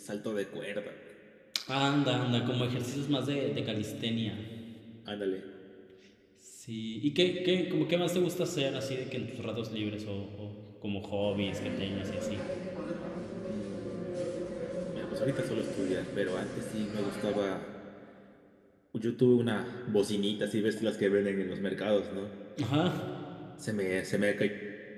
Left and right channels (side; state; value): both; identical; correlation 1.00